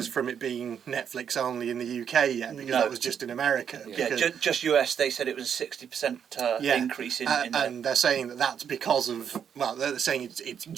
from it being Netflix only in the UK yet, because that was just in America. Yeah, just US. They said it was a 60% increase in. And they're saying that that's because of, well, they're saying it's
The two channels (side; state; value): left; quieter; 8.0 dB